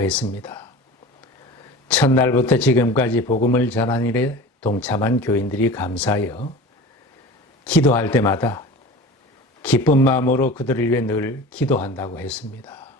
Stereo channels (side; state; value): both; normal; correlation 0.36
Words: 첫날부터 지금까지 복음을 전하는 일에 동참한 교인들이 감사하여 기도할 때마다 기쁜 마음으로 그들을 위해 늘 기도한다고 했습니다.